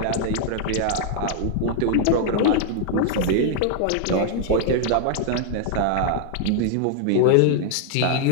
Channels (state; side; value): different; both; correlation 0.00